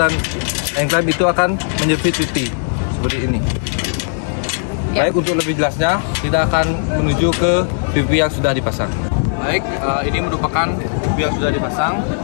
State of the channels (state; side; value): silent; right; 63 dB below the other